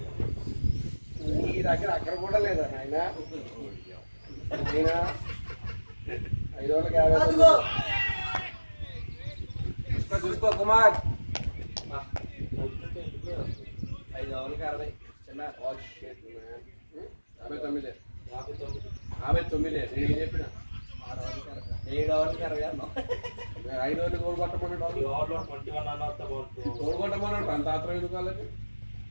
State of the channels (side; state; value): both; inverted; correlation -1.00